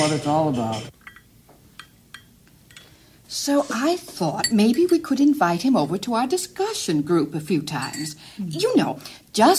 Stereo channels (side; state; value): both; identical; correlation 1.00